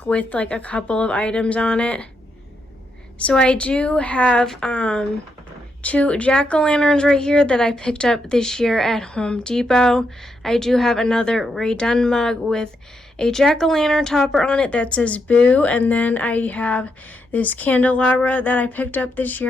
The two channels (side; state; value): both; normal; correlation 0.81